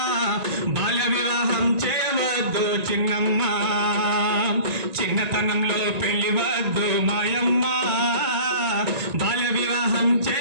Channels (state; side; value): late; left; 1.9 ms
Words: బాల్య వివాహం చేయవద్దు చిన్నమ్మ చిన్నతనంలో పెళ్లి వద్దు మాయమ్మ బాల్య వివాహం